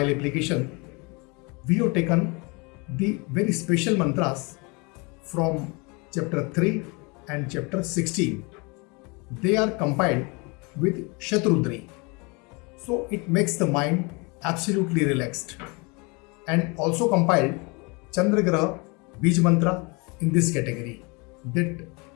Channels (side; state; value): right; quieter; 29.1 dB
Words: application, we have taken the very special mantras from chapter 3 and chapter 16. They are compiled with Shatrudri. So it makes the mind absolutely relaxed. And also compiled Chandragraha Bij Mantra in this category that